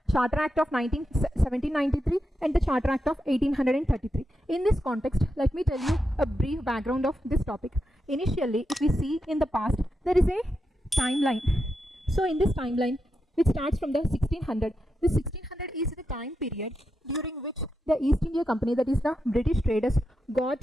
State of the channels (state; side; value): normal; both; correlation 0.86